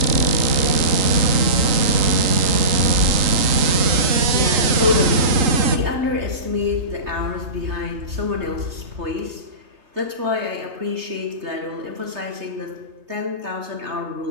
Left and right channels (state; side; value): late; left; 3.8 ms